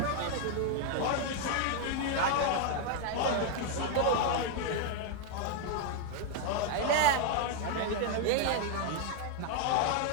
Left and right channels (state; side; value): different; both; correlation 0.00